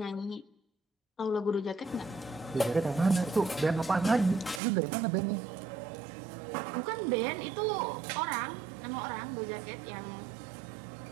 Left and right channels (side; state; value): left; drops out; at 4.6 s